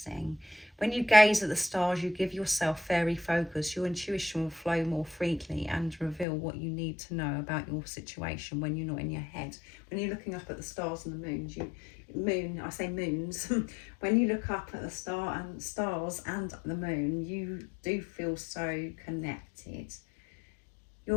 When you gaze at the stars, you give yourself fairy focus. Your intuition will flow more freely and reveal what you need to know about your situation when you're not in your head. When you're looking up at the stars and the moons, I say moons. When you look up at the stars and the moon, you do feel so connected.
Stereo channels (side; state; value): right; drops out; at 6.2 s